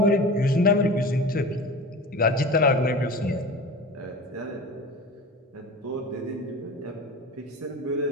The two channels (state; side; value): normal; both; correlation 0.34